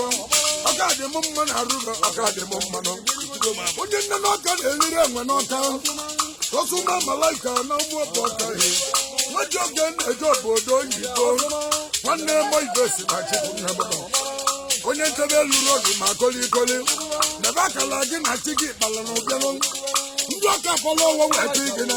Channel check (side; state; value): both; identical; correlation 1.00